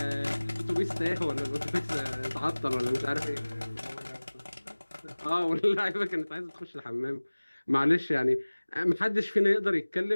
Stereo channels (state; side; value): inverted; both; correlation -1.00